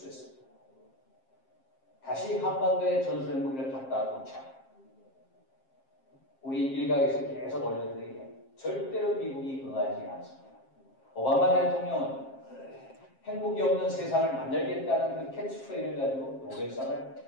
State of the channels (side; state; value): right; late; 7.5 ms